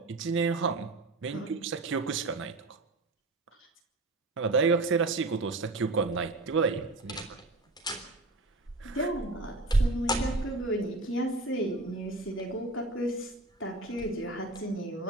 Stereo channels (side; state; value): left; quieter; 3.0 dB